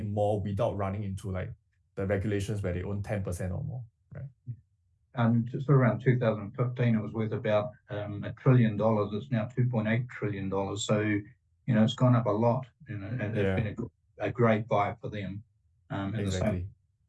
more without running into like the regulations where they own 10% or more, right? Just around 2015, it was worth about $1 trillion. It's now $2.8 trillion. So it's gone up a lot. And it's been a great buy for them. Exactly.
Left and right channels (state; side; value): identical; both; correlation 1.00